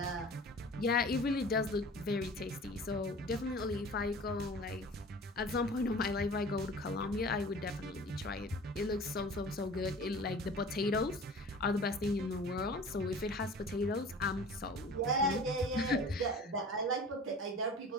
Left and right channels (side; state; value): both; normal; correlation 0.42